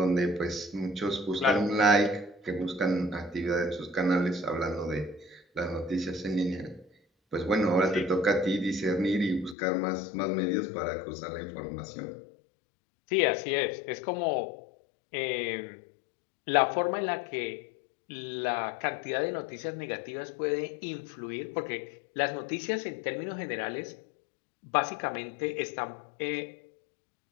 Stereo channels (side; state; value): right; drops out; at 9.6 s